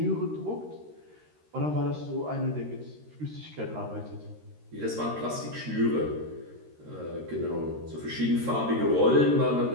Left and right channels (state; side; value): late; left; 13 ms